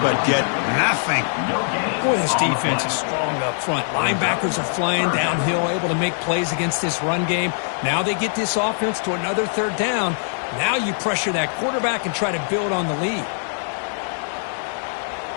get nothing. Boy, this defense is strong up front. Linebackers are flying downhill, able to make plays against this run game. Now they get this offense to another 3rd down. Now you pressure that quarterback and try to build on the lead.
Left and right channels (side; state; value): right; silent; digital silence